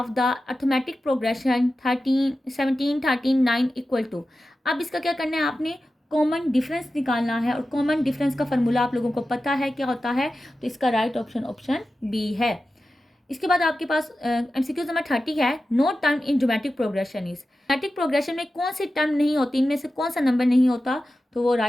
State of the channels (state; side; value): normal; both; correlation 0.93